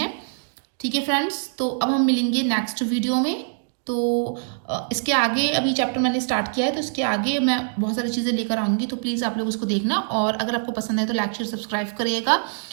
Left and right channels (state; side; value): silent; left; digital silence